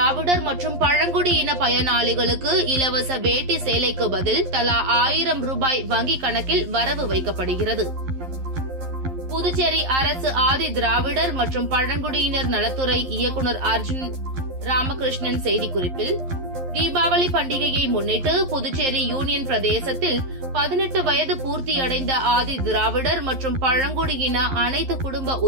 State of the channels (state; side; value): late; left; 11 ms